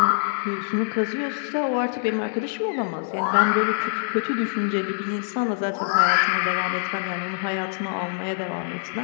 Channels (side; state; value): right; silent; digital silence